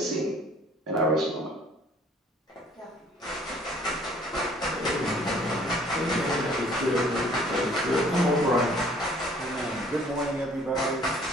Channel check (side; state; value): both; normal; correlation 0.56